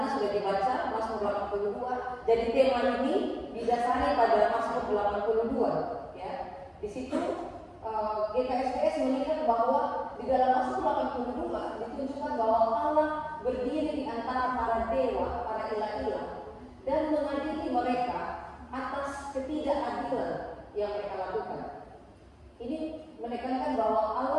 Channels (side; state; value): both; identical; correlation 1.00